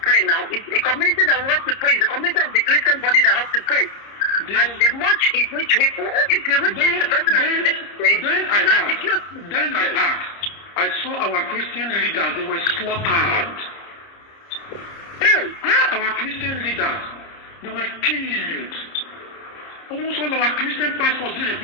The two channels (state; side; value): late; right; 30 ms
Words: now. It's a community that wants to pray. It's a community of the Christian body that has to pray. And the much is rich people. If you reach the person then I asked. I saw our Christian leaders, they were slaughtered. Our Christian leaders, they were killed. Almost all our Christian pastors,